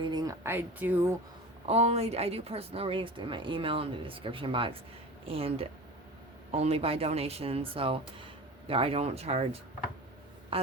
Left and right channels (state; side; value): normal; both; correlation 0.33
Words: I do personal readings through my email in the description box. And only by donation. So, I don't charge. I